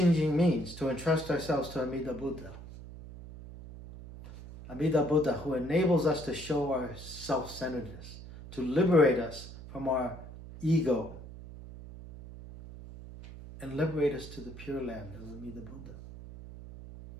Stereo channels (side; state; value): right; noise; hum, 14 dB below the sound